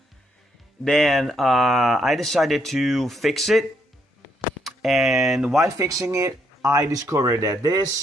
Then I decided to fix it, and while fixing it, I discovered that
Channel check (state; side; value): normal; both; correlation 0.74